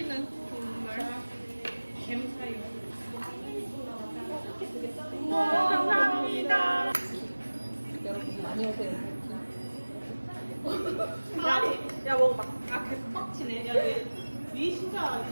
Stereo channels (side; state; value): both; inverted; correlation -1.00